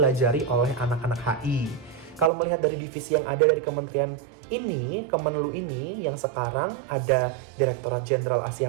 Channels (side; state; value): left; drops out; at 2.3 s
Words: oleh anak-anak HI. Kalau melihat dari divisi yang ada dari kementerian ini, Kemenlu ini, yang sekarang ada Direktorat Jenderal